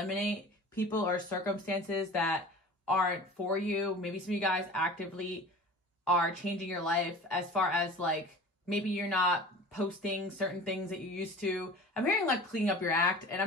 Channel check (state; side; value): normal; both; correlation 0.40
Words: people or circumstances that aren't for you. Maybe some of you guys actively are changing your life as far as like, maybe you're not posting certain things that you used to. I'm hearing like cleaning up your act, and